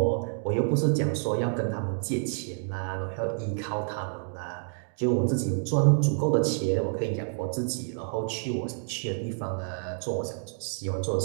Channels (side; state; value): left; silent; 59 dB below the other